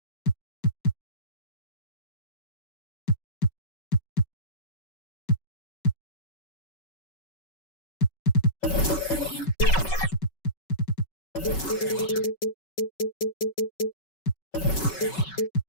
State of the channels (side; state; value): right; late; 5.3 ms